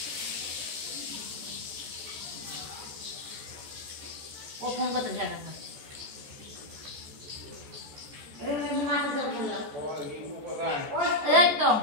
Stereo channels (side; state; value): left; late; 14 ms